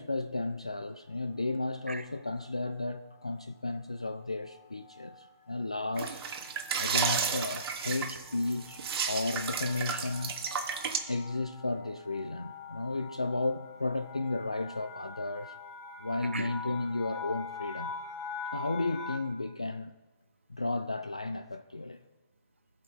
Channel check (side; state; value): both; inverted; correlation -0.64